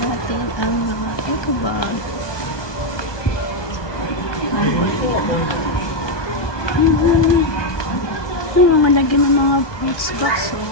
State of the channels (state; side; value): late; right; 1.2 ms